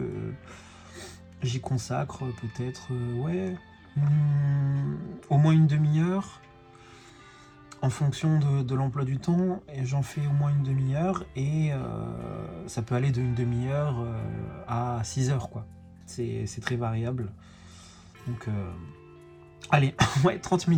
j'y consacre peut-être, au moins une demi-heure, en fonction de l'emploi du temps, et j'en fais au moins une demi-heure, et ça peut aller d'une demi-heure à 6 heures, quoi. C'est très variable. Donc allez, ouais, 30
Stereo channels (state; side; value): identical; both; correlation 1.00